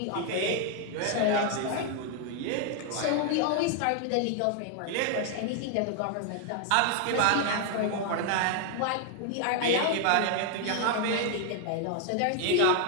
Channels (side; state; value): both; different; correlation 0.00